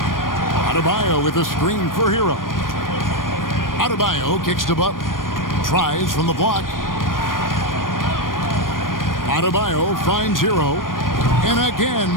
Adebayo with a screen for Hero. Adebayo kicks to Butler. Tries from the block. Adebayo finds Hero. And again,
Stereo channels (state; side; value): late; right; 0.90 ms